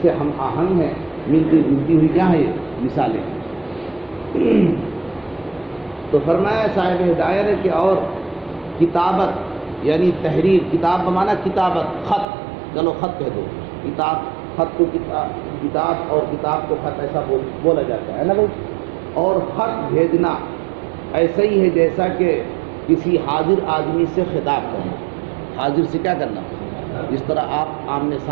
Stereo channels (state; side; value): drops out; left; at 12.2 s